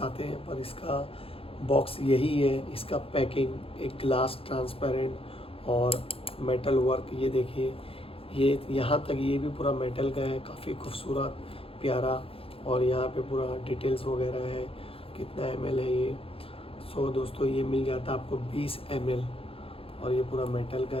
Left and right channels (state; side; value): late; right; 0.27 ms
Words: आते हैं पर इसका बॉक्स यही है। इसका पैकिंग एक ग्लास ट्रांसपेरेंट और मेटल वर्क, ये देखिए, ये यहाँ तक ये भी पूरा मेटल का है, काफ़ी खूबसूरत प्यारा। और यहाँ पे पूरा डिटेल्स वगैरह है, कितना ml है ये। सो दोस्तों ये मिल जाता है आपको 20 ml, और ये पूरा मेटल का